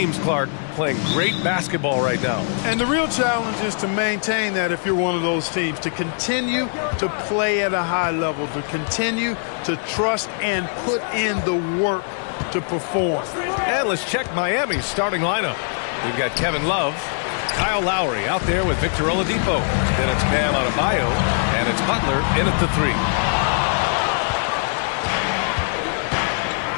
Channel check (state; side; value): silent; right; 64 dB below the other